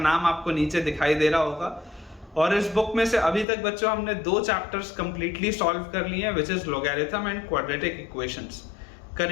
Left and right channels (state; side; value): drops out; right; at 3.5 s